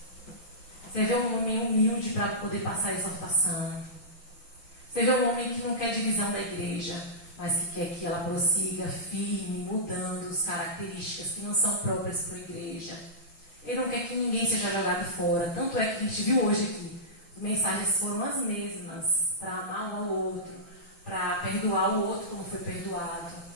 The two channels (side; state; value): right; late; 6.0 ms